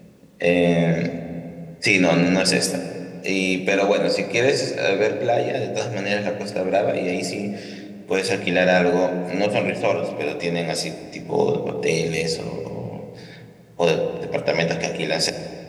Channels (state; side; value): identical; both; correlation 1.00